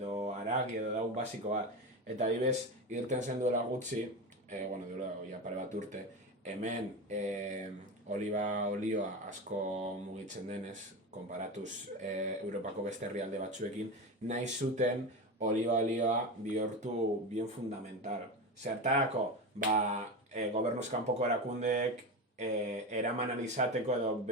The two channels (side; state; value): both; normal; correlation 0.21